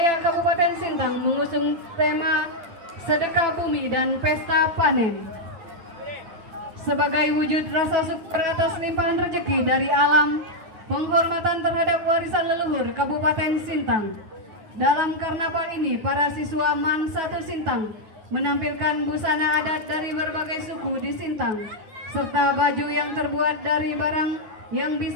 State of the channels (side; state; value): left; late; 9.3 ms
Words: Kabupaten Sintang mengusung tema Sedekah Bumi dan Pesta Panen. Sebagai wujud rasa syukur atas limpahan rezeki dari alam, penghormatan terhadap warisan leluhur Kabupaten Sintang. Dalam karnaval ini, para siswa MAN 1 Sintang menampilkan busana adat dari berbagai suku di Sintang, serta baju yang terbuat dari barang yang